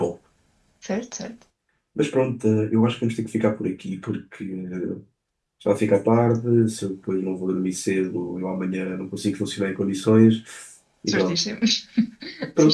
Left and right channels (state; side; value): identical; both; correlation 1.00